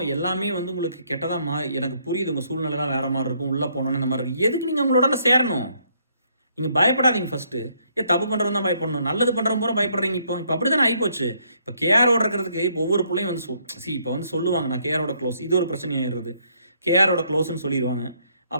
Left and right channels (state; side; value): inverted; both; correlation -0.69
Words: எல்லாமே வந்து உங்களுக்கு கெட்டதா எனக்கு புரியுது உங்க சூழ்நிலைலாம் வேற மாரி இருக்கும். உள்ள போனோனே இந்த மாரி இருக்கு. எதுக்கு நீங்க அவங்களோட சேரணும்? நீங்க பயப்படாதீங்க ஃபர்ஸ்ட்டு. தப்பு பண்றவன் தான் பயப்படணும். நல்லது பண்றவன் பூரா பயப்படுறீங்க இப்போ. இப்ப அப்படித்தானே ஆயிப்போச்சு. இப்ப கேஆரோட இருக்கிறதுக்கு இப்போ ஒவ்வொரு புள்ளையும் வந்து இப்ப வந்து சொல்லுவாங்க, நான் கேஆரோட க்ளோஸ். இது ஒரு பிரச்சனை ஆயிடுது. கேஆரோட க்ளோஸ்ன்னு சொல்லிருவாங்க.